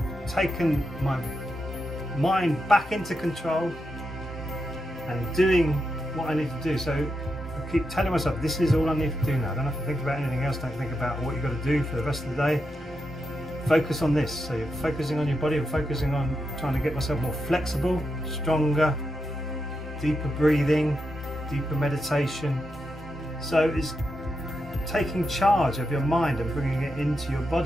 taken my mind back into control and doing what I need to do. So I keep telling myself, this is all I need to do now. I don't have to think about anything else. Don't think about what you've got to do for the rest of the day. Focus on this. So you're focusing on your body and focusing on trying to get myself more flexible, stronger, deeper breathing, deeper meditation. So it's taking charge of your mind and bringing it into your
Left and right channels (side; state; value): both; normal; correlation 0.86